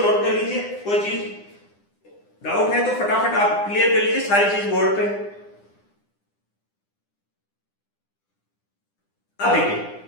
नोट कर लीजिए। कोई चीज डाउट है तो फटाफट आप क्लियर कर लीजिए सारी चीज बोर्ड पे। अब देखिए,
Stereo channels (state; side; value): late; right; 9.9 ms